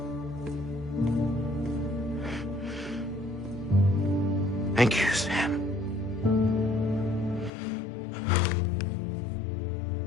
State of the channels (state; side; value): drops out; right; at 7.5 s